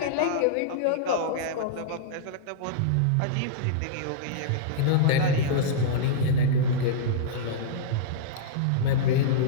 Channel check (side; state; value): both; different; correlation -0.03